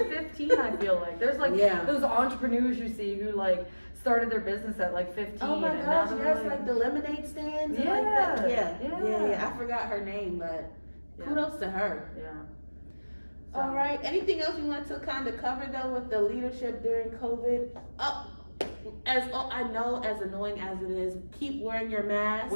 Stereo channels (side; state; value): both; inverted; correlation -1.00